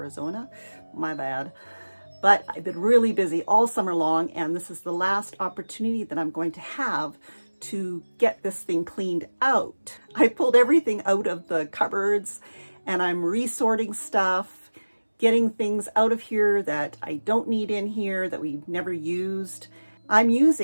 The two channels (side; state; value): both; inverted; correlation -1.00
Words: My bad. But I've been really busy all summer long, and this is the last opportunity that I'm going to have to get this thing cleaned out. I pulled everything out of the cupboards, and I'm resorting stuff, getting things out of here that I don't need in here, that we've never used. I'm